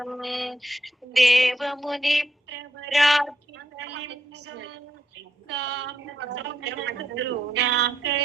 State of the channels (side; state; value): both; normal; correlation 0.78